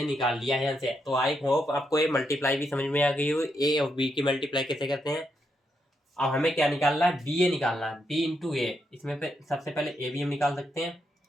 निकाल लिया है यहाँ से। तो आई होप आपको ये मल्टीप्लाई भी समझ में आ गई हो, ए और बी की मल्टीप्लाई कैसे करते हैं। अब हमें क्या निकालना है, बी ए निकालना है, बी इंटू ए। इसमें सबसे पहले ए बी हम निकाल सकते हैं,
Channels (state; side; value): normal; both; correlation 0.81